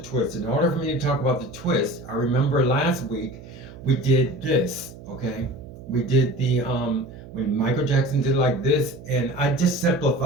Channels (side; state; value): right; noise; hum, 17 dB below the sound